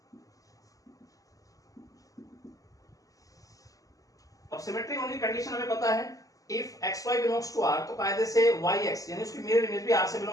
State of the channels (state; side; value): late; right; 0.17 ms